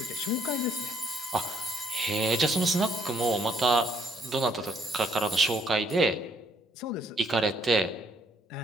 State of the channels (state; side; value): normal; both; correlation 0.68